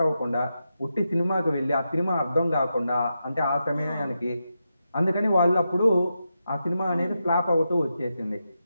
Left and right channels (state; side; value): inverted; both; correlation -0.87